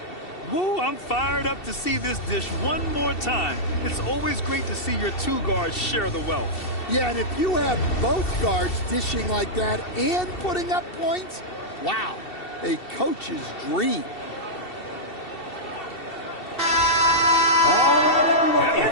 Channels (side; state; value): right; late; 2.7 ms